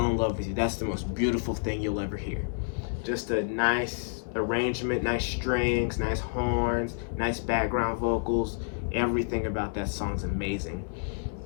in Love with You, that's the most beautiful thing you'll ever hear. Just a nice arrangement, nice strings, nice horns, nice background vocals. Everything about that song's amazing.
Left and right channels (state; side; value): silent; right; 58 dB below the other